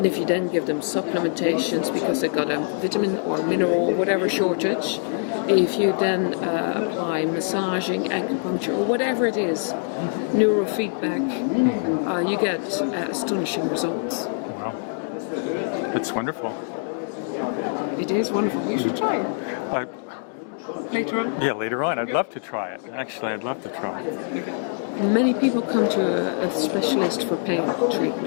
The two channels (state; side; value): silent; right; digital silence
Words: And if you then give them supplementations because they've got a vitamin or mineral, whatever shortage, if you then apply massaging, acupuncture, or whatever it is, neurofeedback, you get astonishing results. Wow. It's wonderful. It is wonderful. You should try it. Later on? Yeah, later on. I'd love to try it. Actually, I'd love to try it. Many people come to a specialist for pain